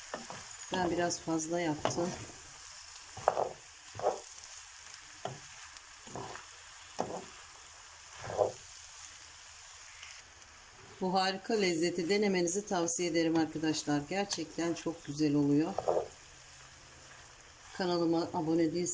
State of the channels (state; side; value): identical; both; correlation 1.00